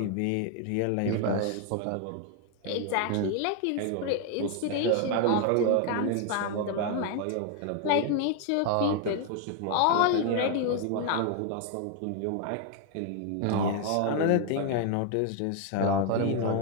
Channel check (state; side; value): different; both; correlation 0.00